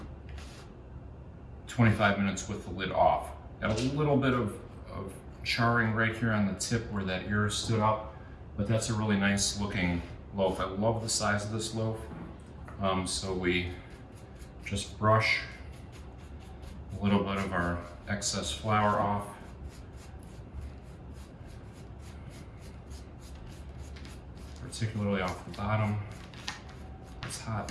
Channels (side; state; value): both; identical; correlation 1.00